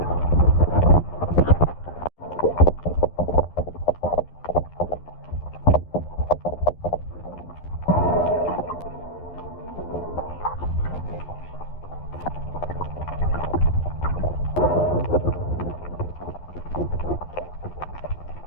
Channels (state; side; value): late; right; 11 ms